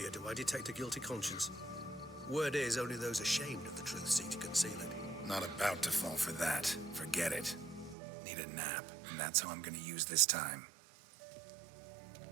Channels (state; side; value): drops out; left; at 8.0 s